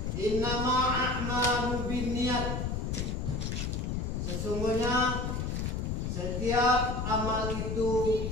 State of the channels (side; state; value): left; noise; rumble, 2 dB below the sound